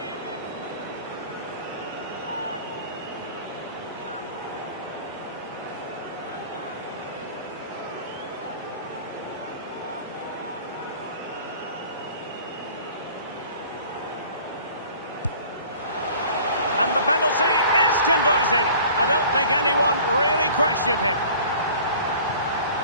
And the penalty is converted. I don't think anyone really questioned him.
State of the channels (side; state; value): both; inverted; correlation -0.47